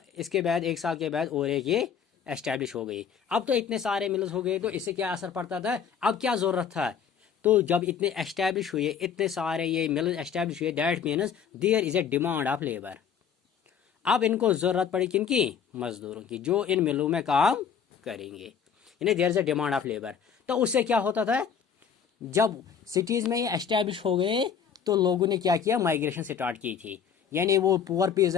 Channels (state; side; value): quieter; right; 7.3 dB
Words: बाद एक साल के बाद और एक ये एस्टैब्लिश हो गई। अब तो इतने सारे मिल्स हो गए, तो इससे क्या असर पड़ता था? अब क्या ज़रूरत था? तो जब इतने एस्टैब्लिश हुए, इतने सारे ये मिल्स एस्टैब्लिश हुए, that means there is a demand of labour. अब इनको ज़रूरत पड़ी किनकी? मजदूरों की, जो इन मिलों में काम करेंगे। यानी there is a demand of labour. तो उससे क्या होता था? जब सिटीज़ में ये एस्टैब्लिश हो गए, तो लोगों ने क्या किया? माइग्रेशन स्टार्ट की थी। यानी वो पुअर